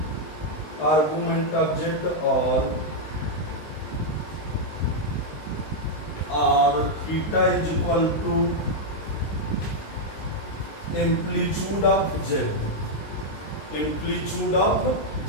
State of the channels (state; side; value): late; right; 19 ms